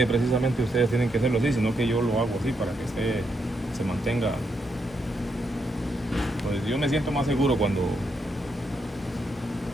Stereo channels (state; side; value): normal; both; correlation 0.80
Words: precisamente ustedes tienen que hacerlo así, sino que yo lo hago así para que se mantenga. Pues yo me siento más seguro cuando